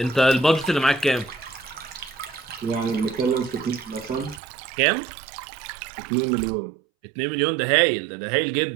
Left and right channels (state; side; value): drops out; left; at 4.4 s